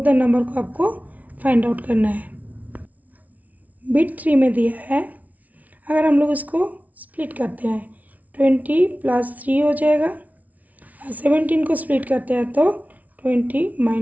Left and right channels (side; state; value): left; late; 0.072 ms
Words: नंबर को आपको फाइंड आउट करना है। बिट 3 में दिया है, अगर हम लोग इसको स्प्लिट करते हैं 20 + 3 हो जाएगा, और 17 को स्प्लिट करते हैं तो 20